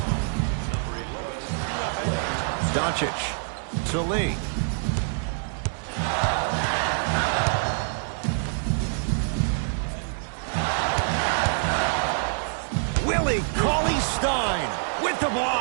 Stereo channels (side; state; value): left; silent; 61 dB below the other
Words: Doncic to Lee. Willie Cauley Stein with the